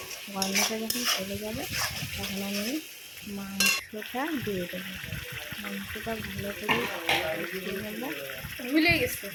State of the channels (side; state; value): both; identical; correlation 1.00